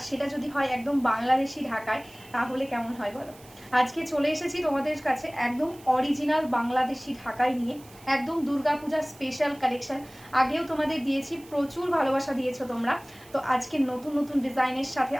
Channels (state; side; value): noise; right; hiss, 23 dB below the sound